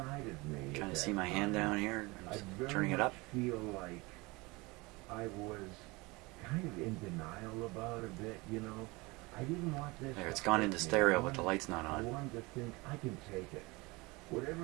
of me. Trying at to see that my hand time, down here. I'm I just very turning it up. much feel like I was kind of in denial about a bit, you know. I didn't want this. There, it's to gone hurt into me. stereo, I but the wanted- light's not I on. wanted to think I can take it.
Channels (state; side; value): quieter; left; 24.4 dB